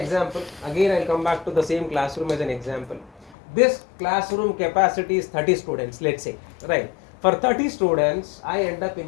Again, I'll come back to the same classroom as an example. This classroom capacity is 30 students, let's say, right? For 30 students, I end up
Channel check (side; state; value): right; drops out; at 3.4 s